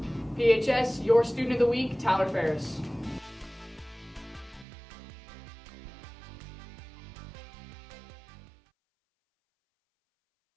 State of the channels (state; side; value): drops out; left; at 4.7 s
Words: PHS, your student of the week, Tyler Ferris.